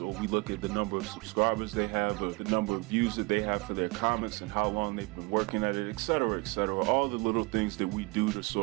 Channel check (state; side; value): quieter; left; 26.4 dB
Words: or we look at the number of subscribers they have, or the number of views that they have for their comics and how long they've been working at it, etc., etc. All the little things that we do to